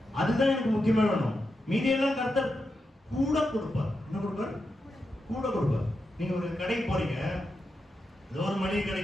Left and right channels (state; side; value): normal; both; correlation 0.87